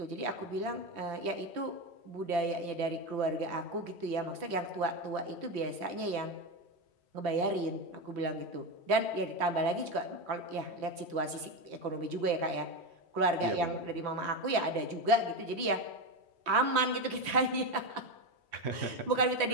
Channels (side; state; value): left; late; 3.1 ms